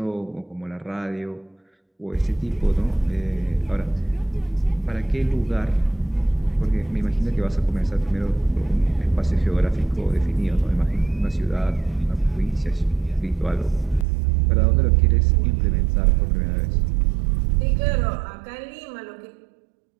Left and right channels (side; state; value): left; drops out; at 14.1 s